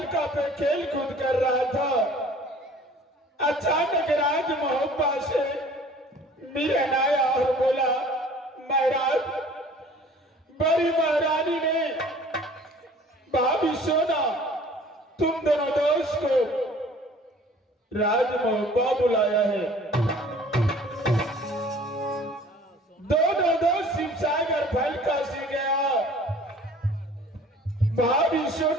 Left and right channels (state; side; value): normal; both; correlation 0.50